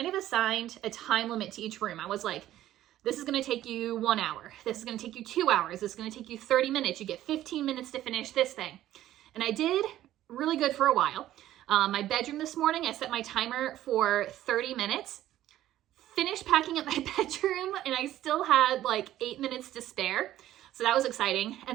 of assigned a time limit to each room. I was like, this is going to take you 1 hour. This is going to take you 2 hours. This is going to take you 30 minutes. You get 15 minutes to finish this thing. And I did really good for a while. My bedroom this morning, I set my timer for 30 minutes. Finished packing up my bedroom and I still had like 8 minutes to spare. So that was exciting.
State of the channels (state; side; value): quieter; left; 13.4 dB